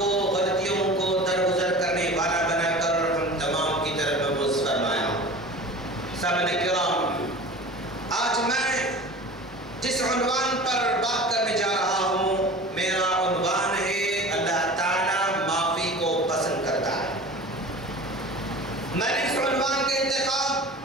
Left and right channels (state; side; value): normal; both; correlation 0.38